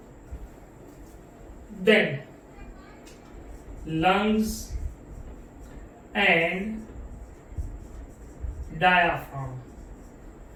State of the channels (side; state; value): both; identical; correlation 1.00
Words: then lungs and diaphragm.